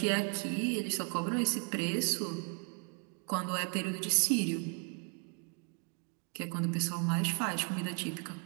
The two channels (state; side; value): quieter; left; 38.4 dB